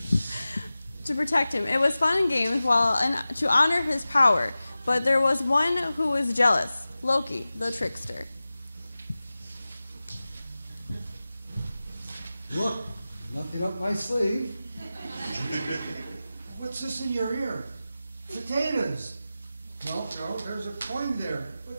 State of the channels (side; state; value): both; inverted; correlation -0.96